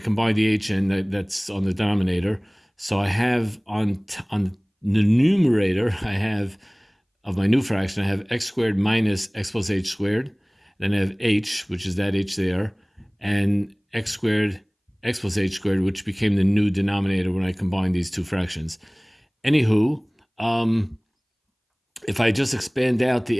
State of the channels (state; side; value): identical; both; correlation 1.00